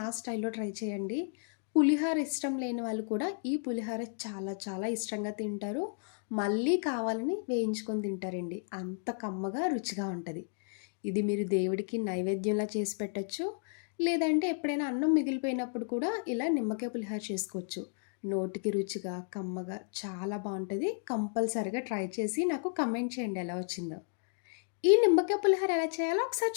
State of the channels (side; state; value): right; silent; digital silence